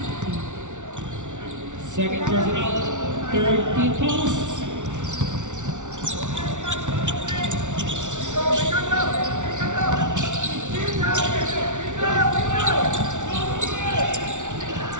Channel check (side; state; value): left; late; 0.86 ms